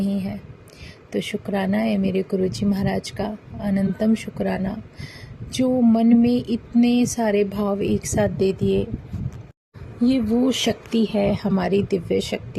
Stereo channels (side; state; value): both; identical; correlation 1.00